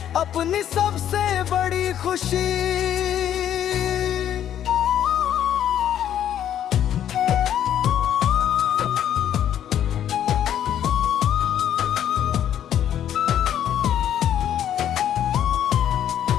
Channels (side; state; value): right; quieter; 10.4 dB